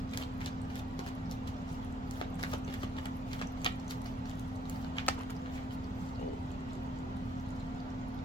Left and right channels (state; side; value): normal; both; correlation 0.67